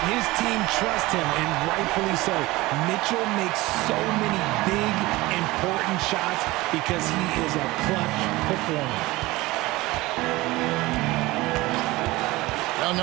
His team trusts him, and rightfully so. Mitchell makes so many big, important shots because he is a clutch performer. Young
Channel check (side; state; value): left; quieter; 20.0 dB